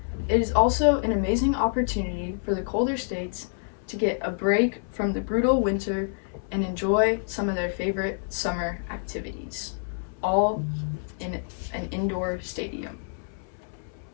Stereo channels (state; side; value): silent; right; 60 dB below the other